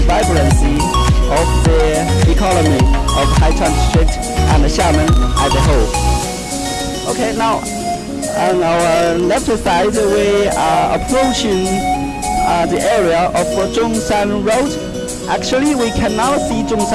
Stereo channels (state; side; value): identical; both; correlation 1.00